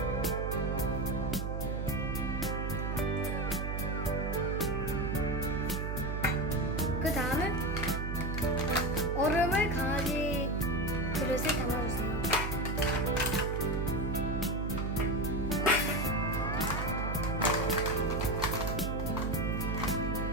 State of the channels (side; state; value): right; noise; hum, 2 dB below the sound